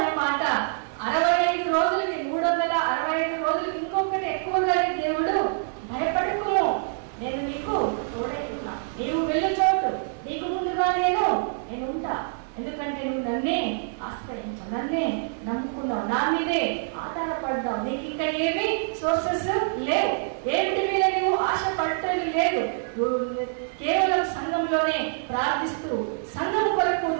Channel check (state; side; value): silent; left; 61 dB below the other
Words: మాట 65 రోజులకి, 365 రోజులకి. ఇంకొకటి ఎక్కువగానే దేవుడు, భయపడకుము, నేను నీకు తోడై ఉన్నా, నీవు వెళ్ళు చోటు నీకు ముందుగా నేను ఉంటా. ఎందుకంటే నువ్వు నన్నే ఆశ్రయించావు, నన్నే నమ్ముకున్నావు, నా మీదే ఆధారపడ్డావు. నీకు ఇంకా ఏమి సోర్సెస్ లేవు, ఏమిటి మీద నువ్వు ఆశ పట్టేది లేదు. కేవలం సంఘంలోనే ప్రార్థిస్తూ, సంఘం కొరకు